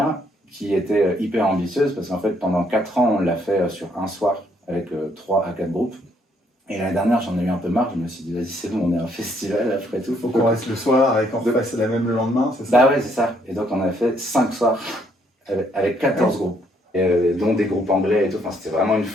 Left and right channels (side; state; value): both; normal; correlation 0.69